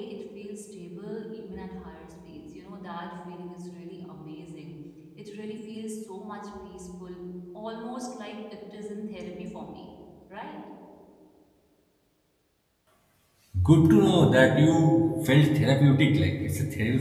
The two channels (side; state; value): both; identical; correlation 1.00